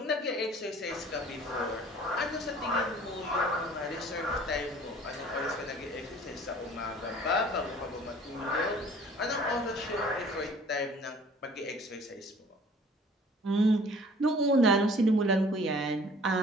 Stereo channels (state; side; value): normal; both; correlation 0.51